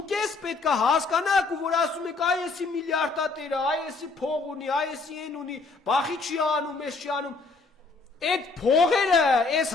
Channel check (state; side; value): quieter; right; 4.0 dB